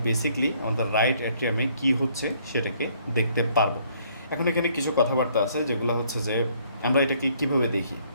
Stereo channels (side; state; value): both; inverted; correlation -0.64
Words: বেসিক্যালি আমাদের রাইট অ্যাট্রিয়ামে কী হচ্ছে সেটাকে দেখতে পারবো। এখন এখানে কিছু কথাবার্তা আছে যেগুলো হচ্ছে যে আমরা এটাকে কীভাবে দেখি।